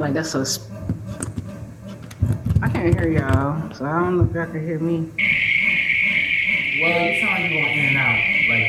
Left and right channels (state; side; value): identical; both; correlation 1.00